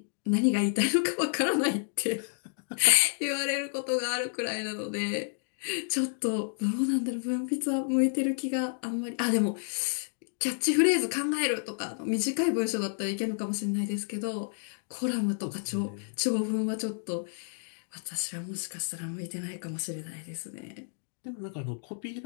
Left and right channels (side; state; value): right; silent; digital silence